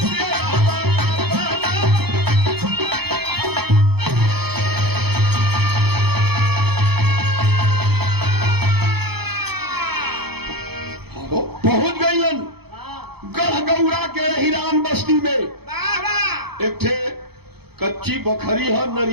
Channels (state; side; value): late; left; 0.97 ms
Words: पहुंच गईलन गढ़गौरा के हिरान बस्ती में। एक ठे कच्ची बखरी है